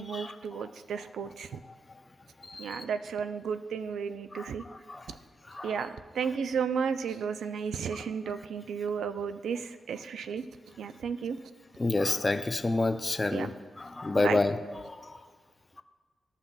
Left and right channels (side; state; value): both; normal; correlation 0.84